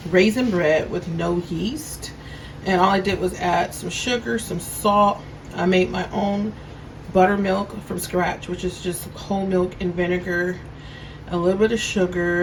raisin bread with no yeast. And all I did was add some sugar, some salt. I made my own buttermilk from scratch, which is just whole milk and vinegar, a little bit of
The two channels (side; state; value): both; identical; correlation 1.00